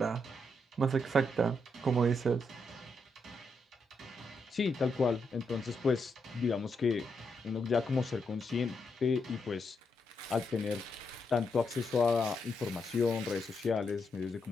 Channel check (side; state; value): both; normal; correlation 0.81